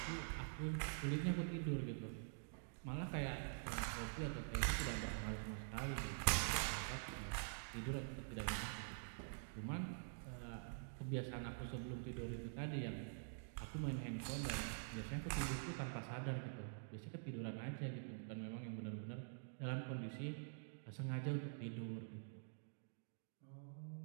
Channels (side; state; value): left; silent; digital silence